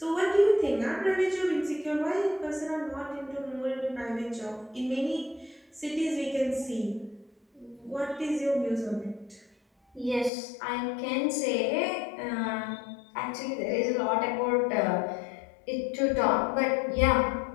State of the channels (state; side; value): drops out; right; at 10.3 s